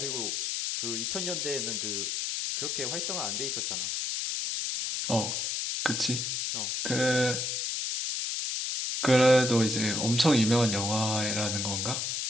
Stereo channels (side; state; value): left; noise; hiss, 1 dB below the sound